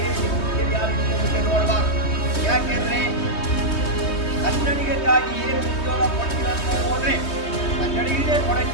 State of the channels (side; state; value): right; late; 3.2 ms